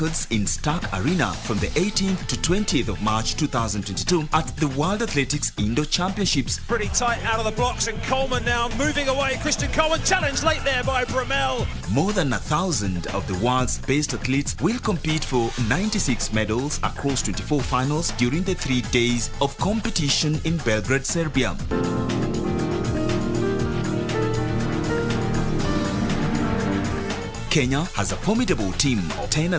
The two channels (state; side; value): identical; both; correlation 1.00